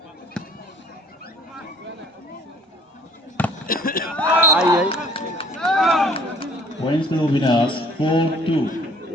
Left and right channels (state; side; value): normal; both; correlation 0.55